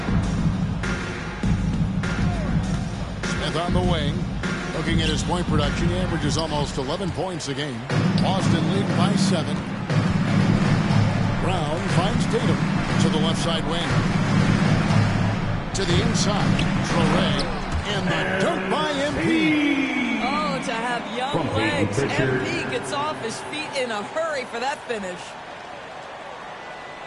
Smith on the wing. Looking at his point production, he averages almost 11 points a game. Boston lead by 7. Brown finds Tatum to the left side wing. To the inside. Traore. And the dunk by MP. Oh, to have young From legs. Pritchard. MP gets off his feet in a hurry for that finish.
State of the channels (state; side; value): identical; both; correlation 1.00